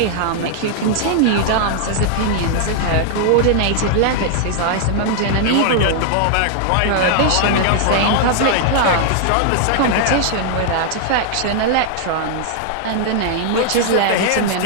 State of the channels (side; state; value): both; different; correlation -0.01